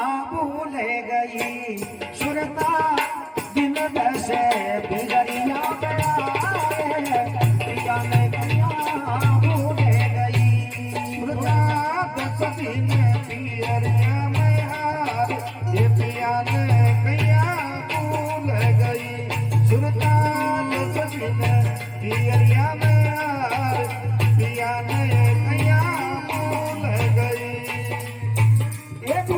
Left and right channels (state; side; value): identical; both; correlation 1.00